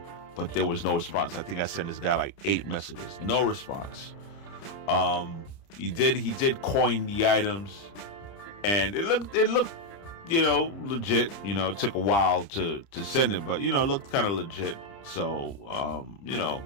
but there was no response. I think I sent this guy like 8 messages. No response. He did coin the items, and it looked, you know, legit. You know, it took a while to send it, but you know, it looked kind of legit. So, you know,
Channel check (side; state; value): right; late; 30 ms